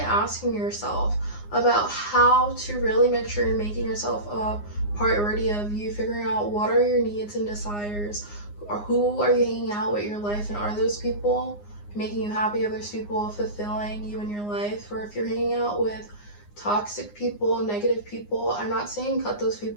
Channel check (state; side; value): late; right; 9.7 ms